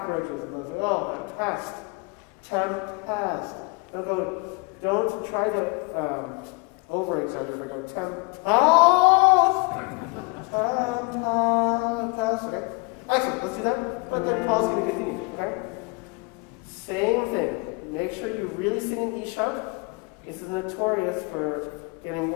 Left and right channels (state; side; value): quieter; right; 29.3 dB